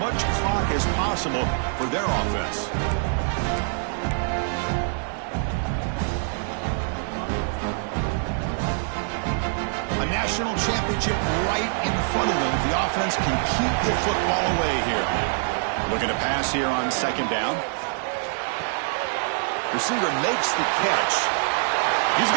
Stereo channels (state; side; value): silent; left; 62 dB below the other